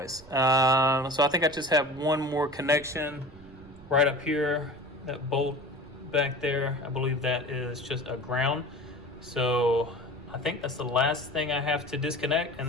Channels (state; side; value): noise; right; rumble, 21 dB below the sound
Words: So I think I just have one more connection right up here, that bolt back there. I believe that is just a ground. So I think that's the last thing I have to disconnect, and